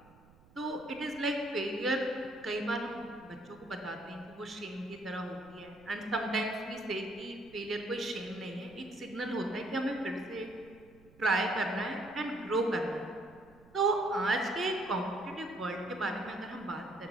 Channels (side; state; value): right; noise; rumble, 25 dB below the sound